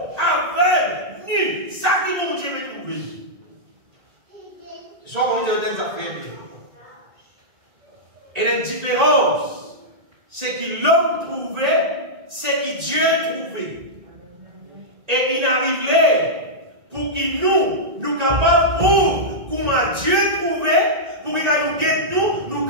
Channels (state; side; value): late; left; 1.8 ms